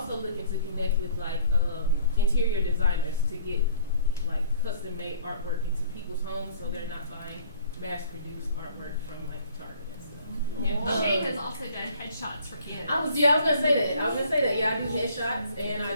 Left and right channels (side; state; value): both; inverted; correlation -0.56